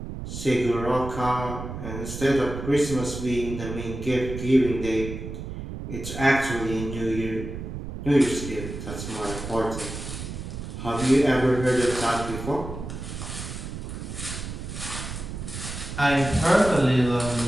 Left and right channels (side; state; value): right; noise; rumble, 8 dB below the sound